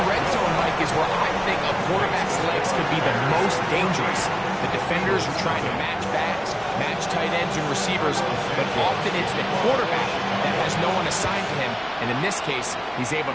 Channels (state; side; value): identical; both; correlation 1.00